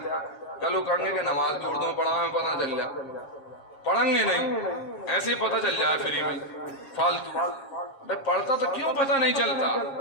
کل وہ کہیں گے کہ نماز بھی اردو میں پڑھا، ہمیں پتہ نہ چل رہا. پڑھیں گے نہیں، ایسے ہی پتہ چل جائے فری میں فالتو. پڑھتا تو کیوں پتہ نہیں چلتا؟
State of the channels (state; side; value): late; right; 7.3 ms